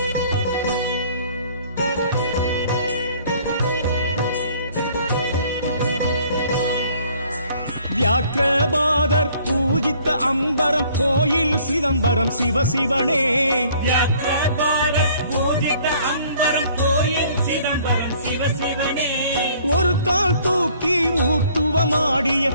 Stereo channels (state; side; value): inverted; both; correlation -0.58